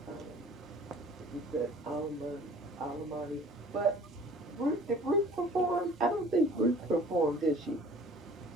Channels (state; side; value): normal; both; correlation 0.49